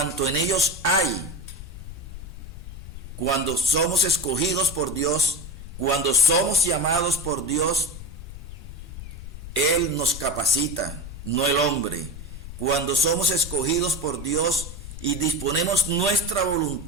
en ellos hay, cuando somos escogidos por Dios, cuando somos llamados por Dios, Él nos capacita, no el hombre. Cuando somos escogidos por Dios y disponemos nuestra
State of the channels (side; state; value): left; noise; rumble, 12 dB below the sound